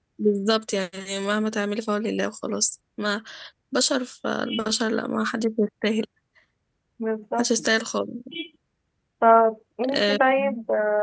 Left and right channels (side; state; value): both; identical; correlation 1.00